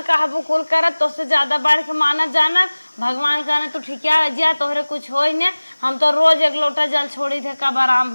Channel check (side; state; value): both; inverted; correlation -1.00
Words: कहबू कुल करत तो से ज्यादा बढ़ के मानत जाना भगवान कहना तू ठिकिया जा तोहरे कुछ होई ने हम तो रोज एक लोटा जल छोड़ी थे कब आराम